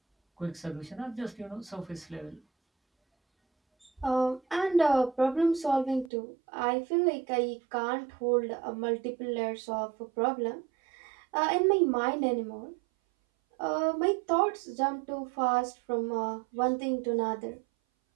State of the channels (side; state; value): left; drops out; at 6.1 s